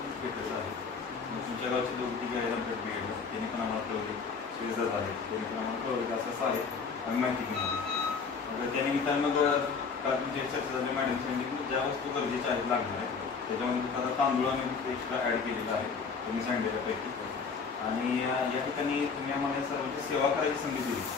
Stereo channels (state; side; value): quieter; right; 5.3 dB